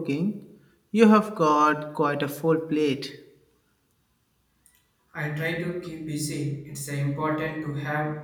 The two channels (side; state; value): both; identical; correlation 1.00